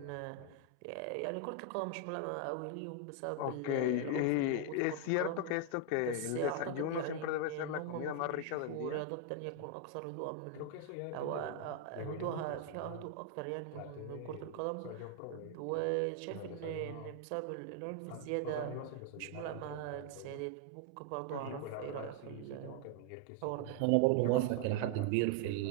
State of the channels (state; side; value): different; both; correlation 0.00